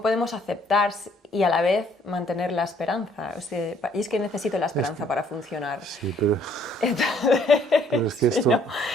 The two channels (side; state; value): both; normal; correlation 0.63